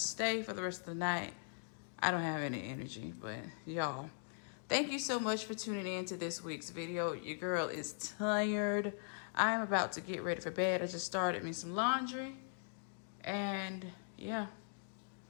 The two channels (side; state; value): right; silent; digital silence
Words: stay for the rest of the night. I don't have any energy, but y'all, thank you so much for tuning in to this week's video. Your girl is tired. I'm about to get ready for bed. I just started me some laundry. And yeah,